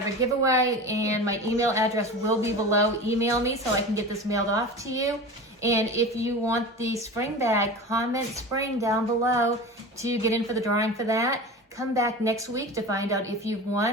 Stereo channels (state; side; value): normal; both; correlation 0.31